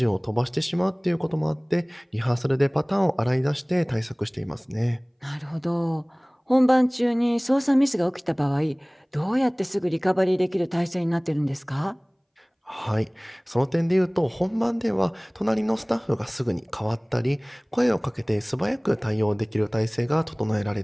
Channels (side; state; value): both; identical; correlation 1.00